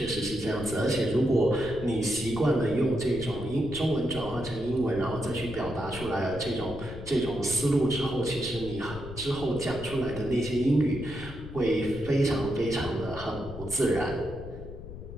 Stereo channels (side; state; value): left; noise; rumble, 12 dB below the sound